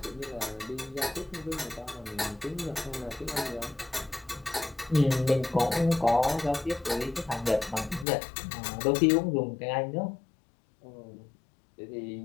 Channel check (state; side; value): drops out; right; at 8.1 s